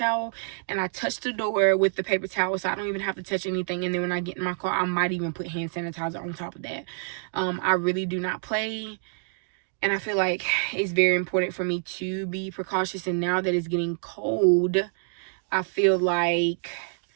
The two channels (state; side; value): silent; left; digital silence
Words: and I touch the door with the paper towel so I don't even have to touch anything. And then when I get in my car, I might even put hand sanitizer on top of that. I really do not play. And I feel like it's very important for me to be precautious. And now that it's getting cold, I feel like